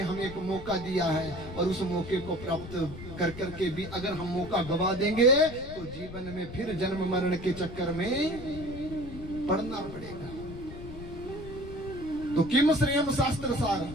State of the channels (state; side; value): noise; left; rumble, 12 dB below the sound